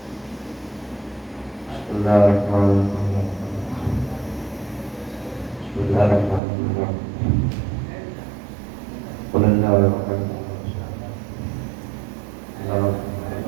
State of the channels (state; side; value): drops out; left; at 6.4 s